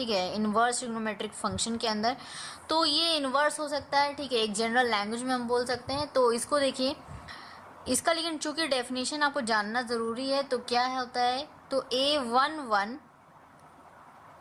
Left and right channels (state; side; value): identical; both; correlation 1.00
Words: है, इन्वर्स ट्रिग्नोमेट्रिक फंक्शन के अंदर। तो ये इन्वर्स हो सकता है। ठीक है, एक जनरल लैंग्वेज में हम बोल सकते हैं। तो इसको देखिए, इसका लेकिन चूंकि डेफिनेशन आपको जानना ज़रूरी है, तो क्या होता है, तो A11